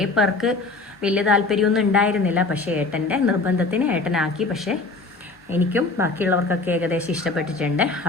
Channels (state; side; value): quieter; right; 3.5 dB